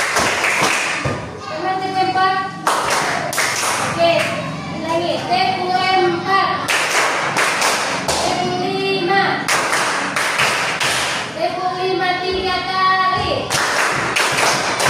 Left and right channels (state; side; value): identical; both; correlation 1.00